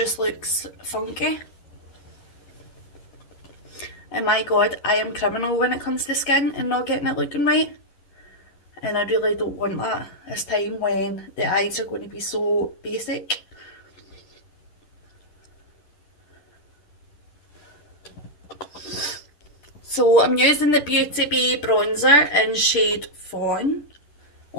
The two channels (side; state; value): right; late; 11 ms